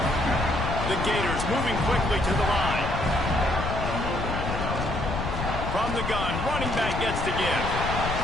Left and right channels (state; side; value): noise; left; rumble, 4 dB below the sound